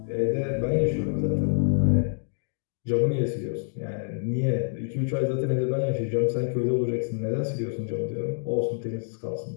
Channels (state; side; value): silent; right; digital silence